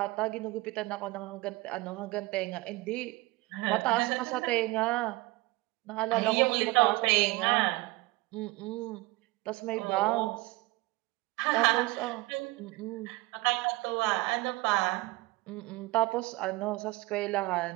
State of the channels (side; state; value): left; quieter; 21.5 dB